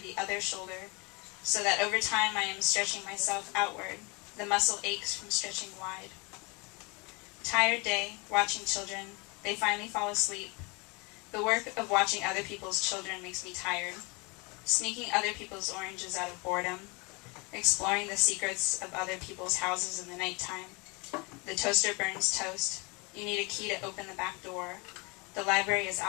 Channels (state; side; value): quieter; right; 28.9 dB